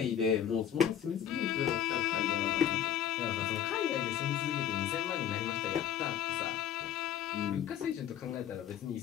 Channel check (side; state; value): right; quieter; 9.9 dB